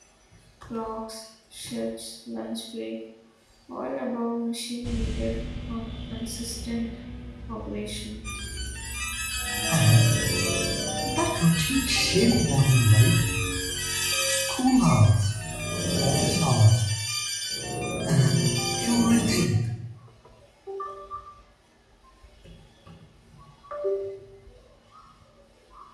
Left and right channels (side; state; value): both; identical; correlation 1.00